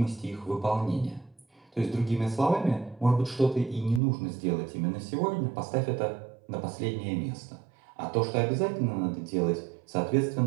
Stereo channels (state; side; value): drops out; left; at 4.0 s